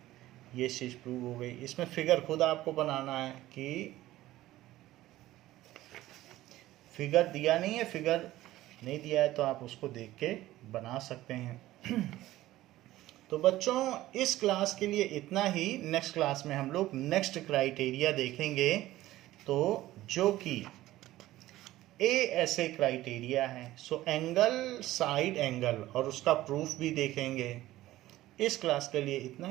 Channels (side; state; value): left; quieter; 15.8 dB